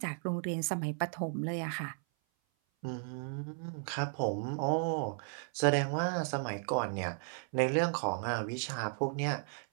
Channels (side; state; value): left; silent; 55 dB below the other